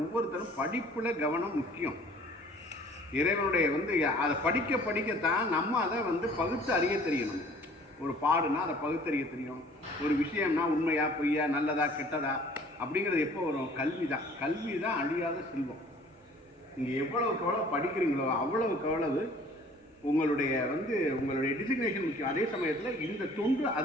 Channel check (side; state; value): both; normal; correlation 0.52